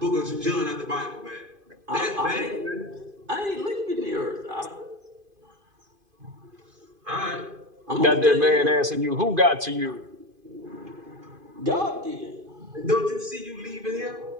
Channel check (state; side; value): late; left; 2.5 ms